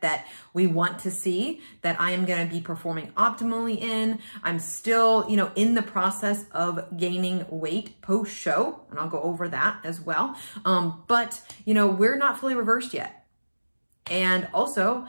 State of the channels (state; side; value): inverted; both; correlation -1.00